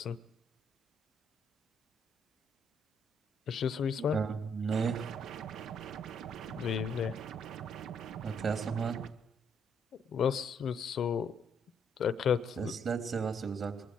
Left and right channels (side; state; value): both; normal; correlation 0.70